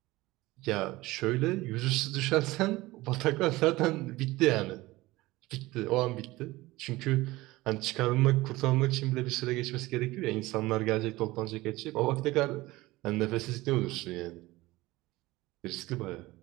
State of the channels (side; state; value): left; quieter; 19.4 dB